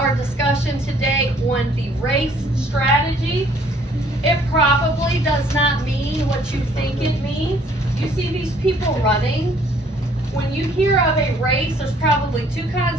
discussion today on the race strategy. It probably does not mean what you think it means. You see these people running. When you hear of a race, there's probably two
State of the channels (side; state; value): both; normal; correlation 0.60